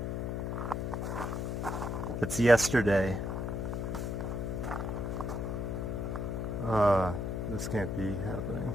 It's yesterday. This can't be happening.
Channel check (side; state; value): left; noise; hum, 2 dB below the sound